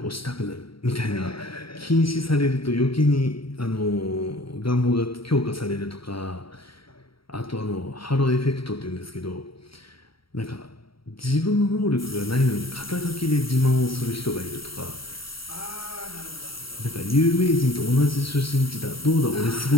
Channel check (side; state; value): right; late; 0.75 ms